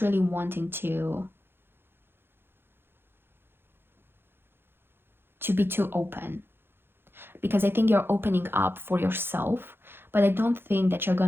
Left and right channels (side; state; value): left; late; 0.10 ms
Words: wanting to be too open, because I think you're opening up for yourself, but I don't think that you're